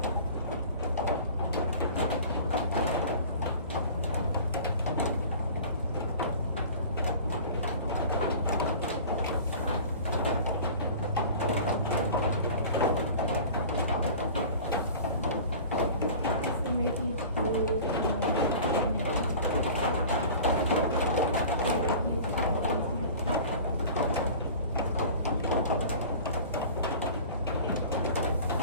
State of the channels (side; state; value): both; inverted; correlation -0.41